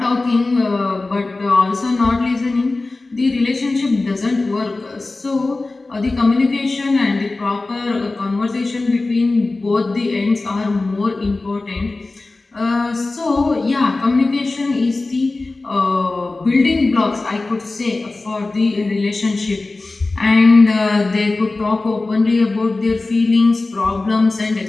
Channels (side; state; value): right; quieter; 3.3 dB